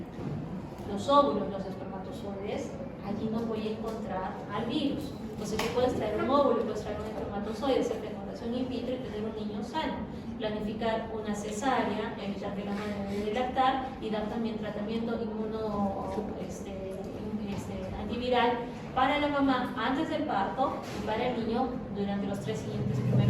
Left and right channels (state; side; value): identical; both; correlation 1.00